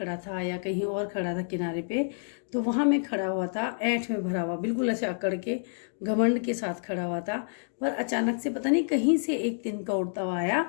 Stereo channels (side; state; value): right; silent; digital silence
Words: था या कहीं और खड़ा था किनारे पे, तो वहाँ मैं खड़ा हुआ था, ऐंठ में भरा हुआ, बिल्कुल ऐसे अकड़ के घमंड के साथ खड़ा हुआ था। पर अचानक से पता नहीं कहीं से एक तिनका उड़ता हुआ